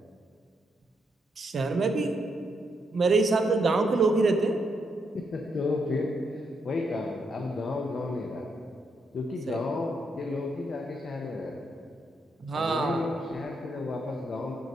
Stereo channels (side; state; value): both; normal; correlation 0.79